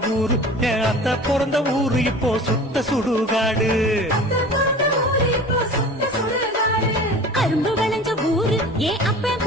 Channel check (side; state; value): both; normal; correlation 0.40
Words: ஊரு, என் அத்தை பிறந்த ஊரு இப்போ சுத்த சுடுகாடு. கரும்பு விளைஞ்ச ஊரு ஏன் அப்பன்